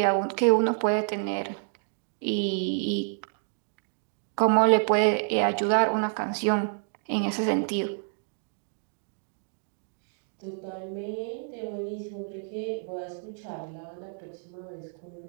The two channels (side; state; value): left; silent; 59 dB below the other